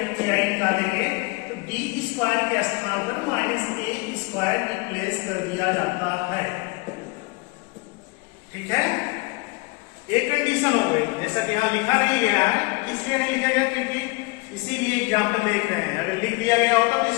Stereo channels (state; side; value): quieter; right; 27.2 dB